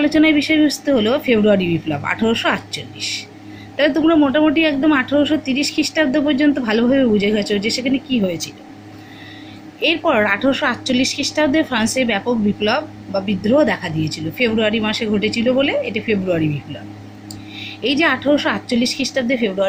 বিষয়বস্তু হলো ফেব্রুয়ারি বিপ্লব 1848। তাহলে তোমরা মোটামুটি একদম 1830 খ্রিস্টাব্দ পর্যন্ত ভালোভাবে বুঝে গেছো যে সেখানে কী হয়েছিল। এরপর 1848 খ্রিস্টাব্দে ফ্রান্সে ব্যাপক বিপ্লব বা বিদ্রোহ দেখা দিয়েছিল, ফেব্রুয়ারি মাসে ঘটেছিল বলে এটা ফেব্রুয়ারি বিপ্লব। এই যে 1848 খ্রিস্টাব্দে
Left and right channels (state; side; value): identical; both; correlation 1.00